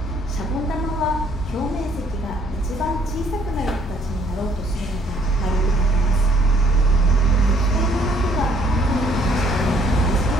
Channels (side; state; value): both; normal; correlation 0.64